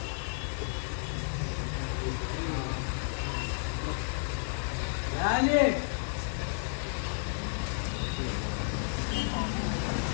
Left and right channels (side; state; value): right; silent; 56 dB below the other